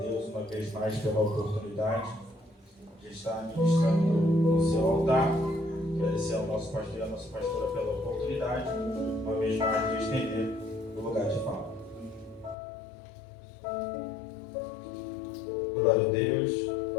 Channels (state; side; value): drops out; right; at 12.6 s